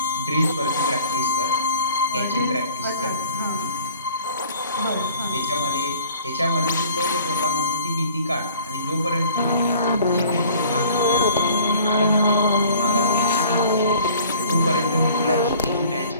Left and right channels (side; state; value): both; inverted; correlation -0.51